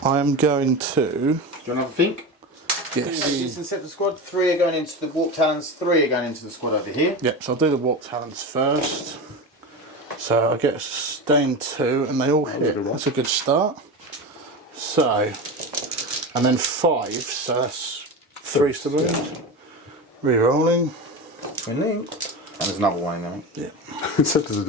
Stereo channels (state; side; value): normal; both; correlation 0.24